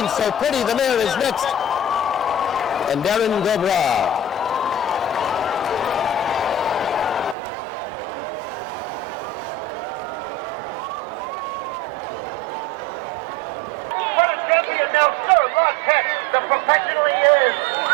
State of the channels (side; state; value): left; drops out; at 7.4 s